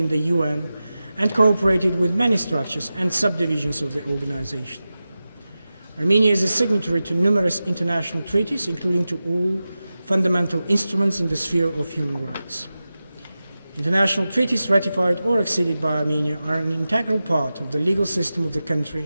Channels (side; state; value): both; inverted; correlation -0.94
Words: the UN and cooperated with many structures and subdivisions of the organization. Armenia is a signatory to numerous international treaties, including to all fundamental instruments in the sphere of human rights. International treaties ratified or acceded by Armenia are an integral part of the legal system of the